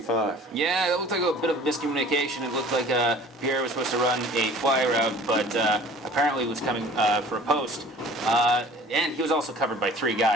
Yeah, that looked like a bit of miscommunication. It looked like Pierre was supposed to run a fly route, but apparently was coming for a post. And he was also covered by 3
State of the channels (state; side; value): normal; both; correlation 0.47